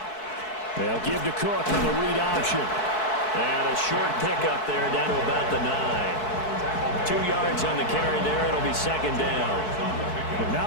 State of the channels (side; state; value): right; late; 4.6 ms